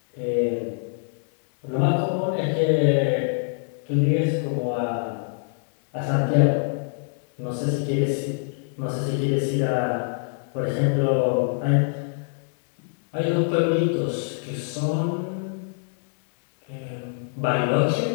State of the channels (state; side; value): silent; right; digital silence